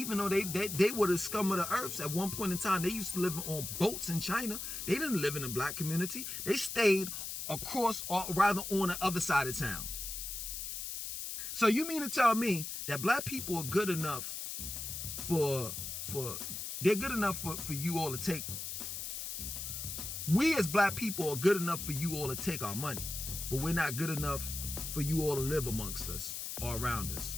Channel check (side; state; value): left; noise; hiss, 5 dB below the sound